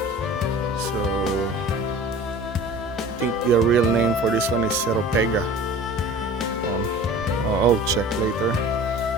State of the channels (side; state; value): both; normal; correlation 0.41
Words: So I think the real name for this one is Seropega. I'll check later.